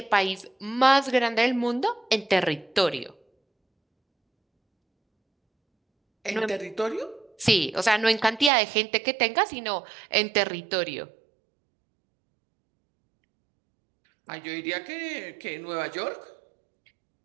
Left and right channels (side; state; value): left; drops out; at 8.5 s